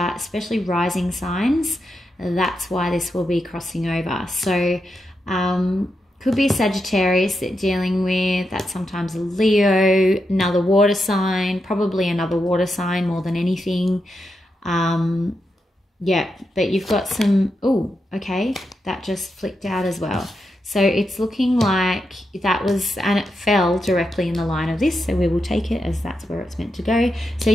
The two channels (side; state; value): both; normal; correlation 0.86